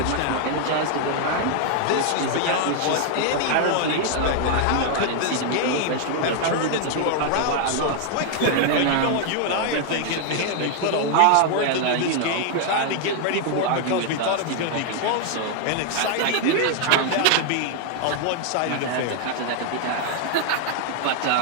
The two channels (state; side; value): different; both; correlation 0.00